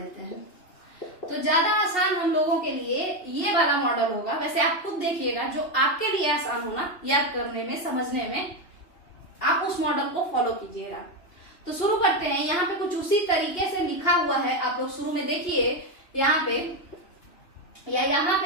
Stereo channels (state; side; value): late; right; 2.9 ms